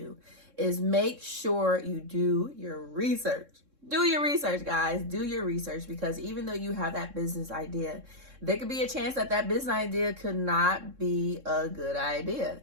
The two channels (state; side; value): late; left; 3.6 ms